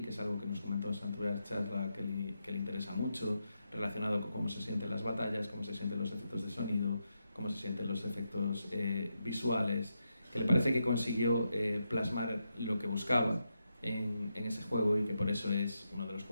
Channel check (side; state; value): both; inverted; correlation -0.85